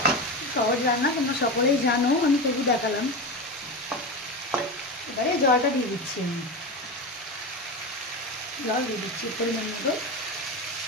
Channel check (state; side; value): normal; both; correlation 0.21